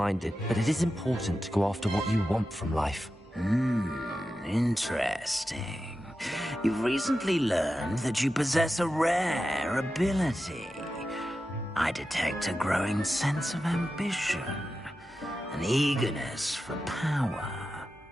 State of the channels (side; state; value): both; normal; correlation 0.91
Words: but it is important to go after what you want from life. Interesting. You've recently learned that you possess a rare ability. I detect a growing sense of ambition, an eagerness for power.